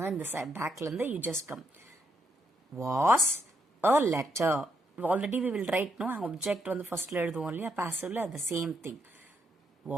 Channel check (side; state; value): both; normal; correlation 0.77